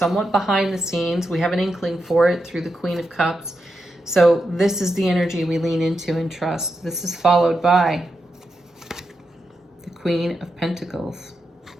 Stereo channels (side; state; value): both; normal; correlation 0.86